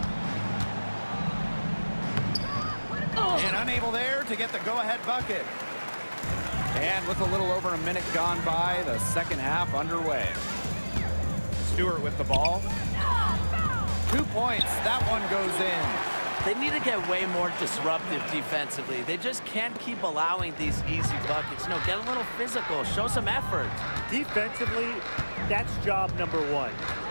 And unable there to get the go-ahead bucket. And with a little over a minute gone by, the second half underway. Stewart with the ball. 2 points. That one goes in. They need to get way more disruptive defensively. They just can't keep allowing these easy buckets. You know, get a little physical, show some effort. Defensively, that's job number one.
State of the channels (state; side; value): inverted; both; correlation -1.00